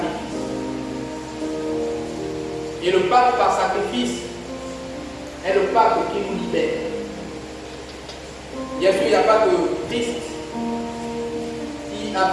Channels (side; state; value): both; identical; correlation 1.00